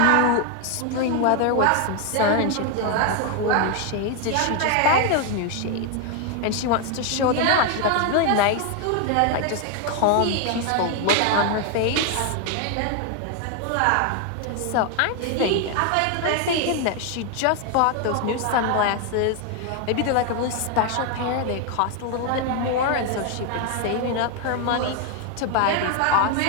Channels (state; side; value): different; both; correlation 0.01